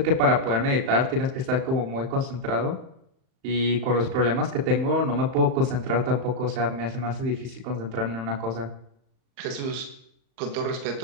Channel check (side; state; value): left; late; 38 ms